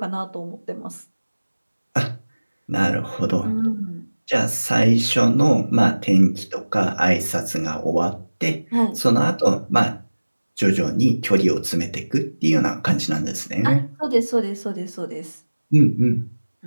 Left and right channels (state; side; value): inverted; both; correlation -1.00